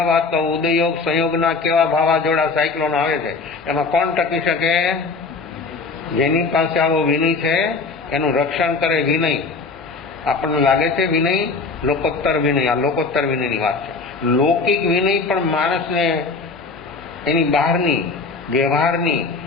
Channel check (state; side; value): quieter; right; 4.2 dB